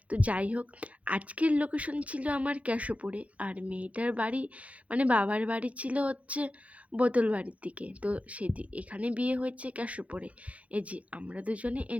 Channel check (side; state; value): left; late; 0.065 ms